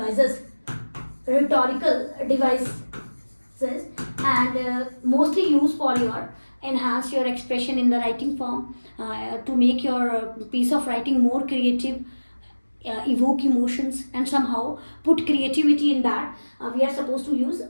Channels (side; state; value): both; inverted; correlation -1.00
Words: and mostly used for your enhance your expression in the writing form, to make your piece of writing more creative, evoke emotions and somehow put creativity in that. We are supposed to use